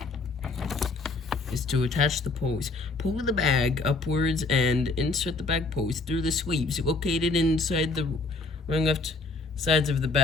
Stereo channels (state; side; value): quieter; right; 3.7 dB